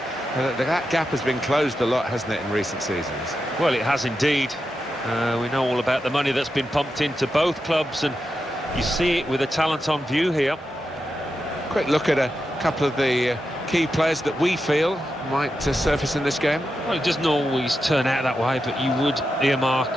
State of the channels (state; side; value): normal; both; correlation 0.88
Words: that gap has been closed a lot, hasn't it, in recent seasons? Well, it has indeed. We know all about the money that's been pumped into both clubs, and you see it with the talent on view here. Quick look at a couple of the key players that we feel might surface in this game. Well, it doesn't always turn out that way, but you would